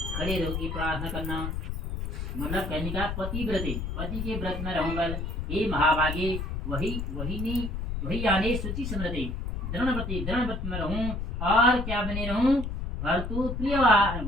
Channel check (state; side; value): noise; left; rumble, 4 dB below the sound